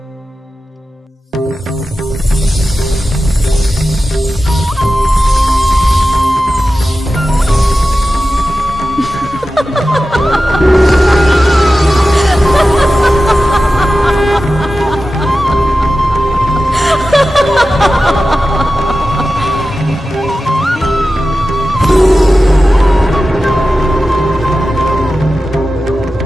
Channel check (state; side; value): normal; both; correlation 0.94